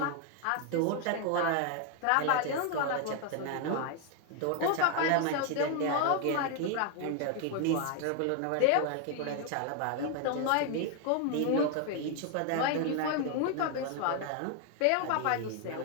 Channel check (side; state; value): both; different; correlation 0.01